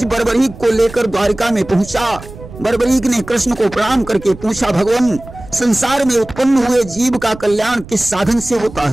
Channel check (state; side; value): noise; right; rumble, 16 dB below the sound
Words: बर्बरीक को लेकर द्वारिका में पहुंचा। बर्बरीक ने कृष्ण को प्रणाम करके पूछा, भगवान, संसार में उत्पन्न हुए जीव का कल्याण किस साधन से होता